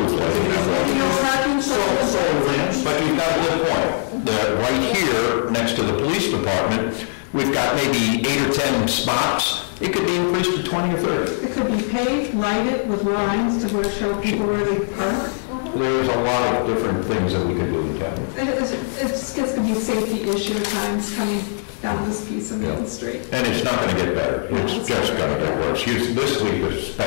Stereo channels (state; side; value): silent; right; digital silence